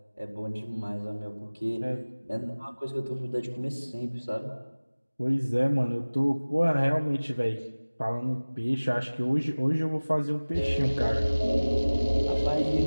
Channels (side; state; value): both; inverted; correlation -1.00